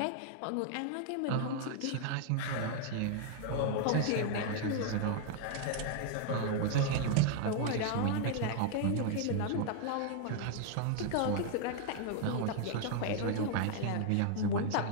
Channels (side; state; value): both; different; correlation 0.00